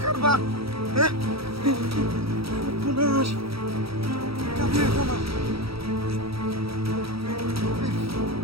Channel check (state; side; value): late; left; 0.76 ms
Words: করবা হ্যাঁ পুনাশ কাবিয়ে কমা